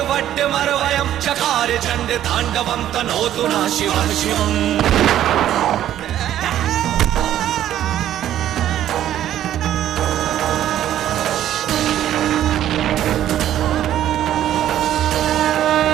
वट्टमरवयं चकार चण्ड ताण्डवं तनोतु नः शिवं शिवम्।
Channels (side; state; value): left; quieter; 11.8 dB